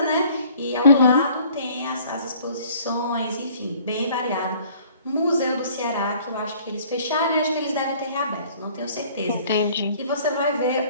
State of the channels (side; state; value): both; inverted; correlation -0.54